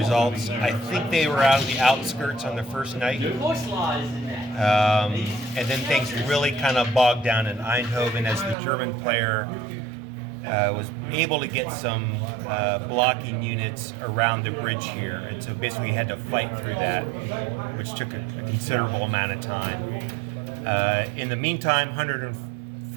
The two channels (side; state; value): left; drops out; at 8.6 s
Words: I think they were out of the outskirts on the first night. And then things really kind of bogged down in Eindhoven as the German player was able to get some blocking units around the bridge here. And so basically had to fight through that, which took a considerable amount of time. In the meantime,